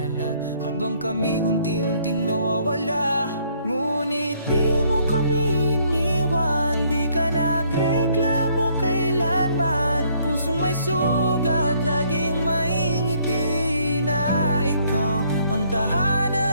habang kami unti-unting nawawala. Ngunit di mo kami iniwan, di ka nagreklamo kailanman. Pusong may sugat, laging maingiti na ikaw ang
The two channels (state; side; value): inverted; both; correlation -0.65